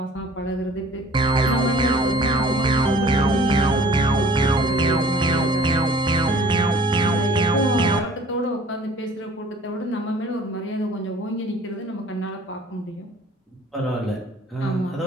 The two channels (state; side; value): normal; both; correlation 0.50